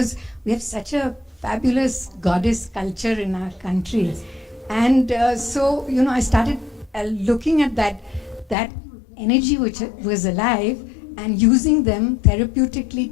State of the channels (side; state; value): right; drops out; at 8.6 s